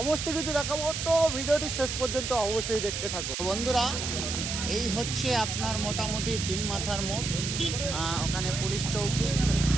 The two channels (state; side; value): noise; right; hiss, 4 dB below the sound